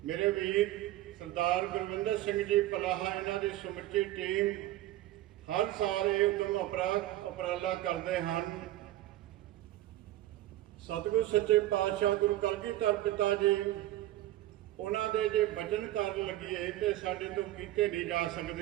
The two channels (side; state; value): left; quieter; 14.8 dB